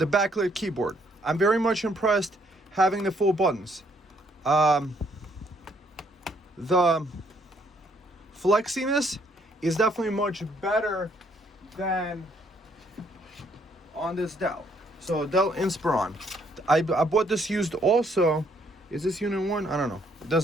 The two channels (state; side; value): normal; both; correlation 0.68